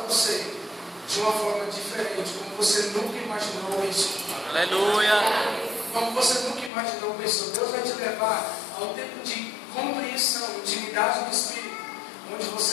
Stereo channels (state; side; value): drops out; right; at 6.7 s